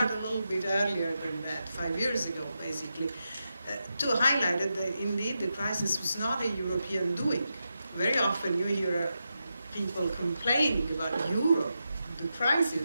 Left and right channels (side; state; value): both; inverted; correlation -0.88